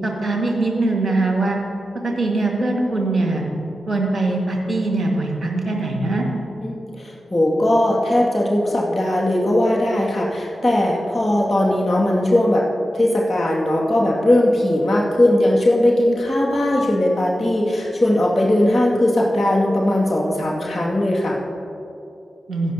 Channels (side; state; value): both; normal; correlation 0.92